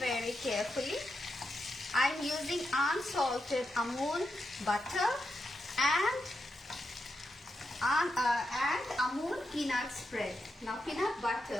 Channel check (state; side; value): normal; both; correlation 0.86